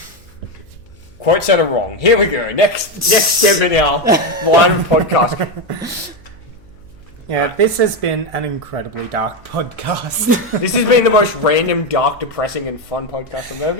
Quite said it wrong. Here we go. Next step in our line of podcast. Yeah, this has been an incredibly dark podcast. This has been the most random, dark, depressing, and fun podcast I've ever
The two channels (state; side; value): noise; left; hum, 29 dB below the sound